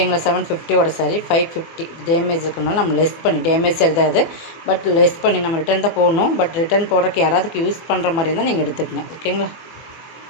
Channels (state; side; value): late; right; 24 ms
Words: 750 சாரி 550 டேமேஜ் இருக்கிறனால நம்ம லெஸ் பண்ணி, டேமேஜ் சரி தான் அது, பட் லெஸ் பண்ணி நம்ம ரிட்டன் தான் போடணும். பட் ரிட்டன் போடுறதுக்கு யாராவதுக்கு யூஸ் பண்ணுற மாதிரி இருந்தால் நீங்கள் எடுத்துக்கங்க. ஓகேங்களா?